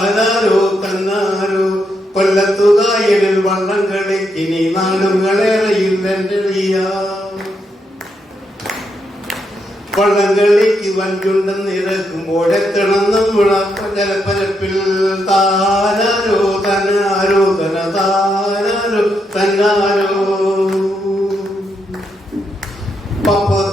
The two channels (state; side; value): normal; both; correlation 0.80